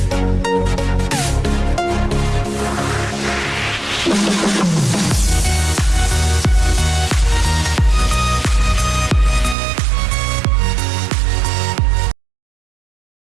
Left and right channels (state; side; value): drops out; left; at 9.6 s